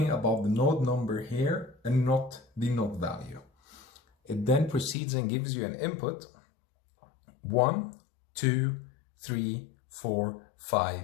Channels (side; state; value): right; drops out; at 5.0 s